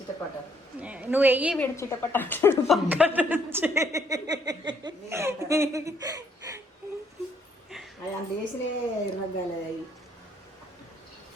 నువ్వు వెయ్యి వీడు చిటపట అంటాడు పక్కన నుంచి. అది అంత వేసినే రగ్గాలి. అవి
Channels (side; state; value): both; normal; correlation 0.68